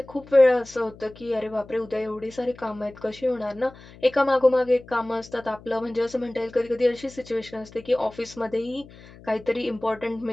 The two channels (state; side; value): noise; left; hum, 21 dB below the sound